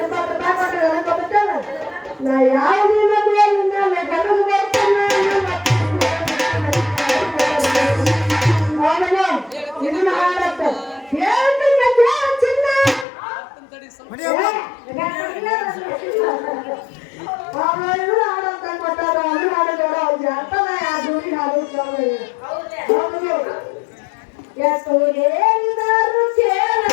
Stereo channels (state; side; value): drops out; right; at 13.1 s